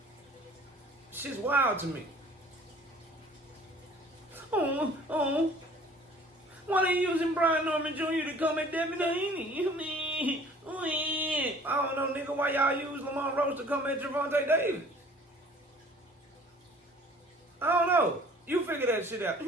Shit's wild to me. Oh. Why they using Brian Norman Jr. to come at Devin Haney? I don't know, nigga, why y'all use Lamont Roach to come at Gervonta Davis? I don't know. You figure that shit out.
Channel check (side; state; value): both; normal; correlation 0.51